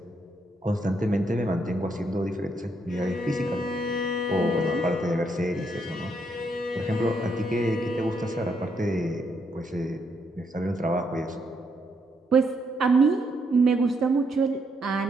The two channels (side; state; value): both; normal; correlation 0.76